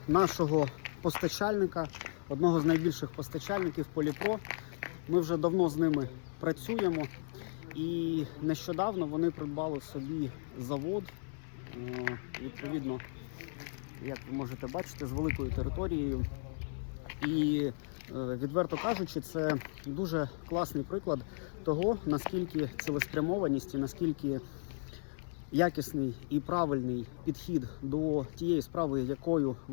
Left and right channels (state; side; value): silent; right; 54 dB below the other